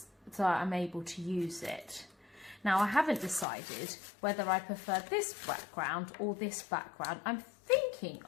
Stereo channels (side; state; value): right; drops out; at 3.5 s